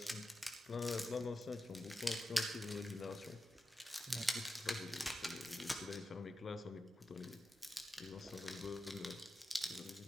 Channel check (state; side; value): normal; both; correlation 0.91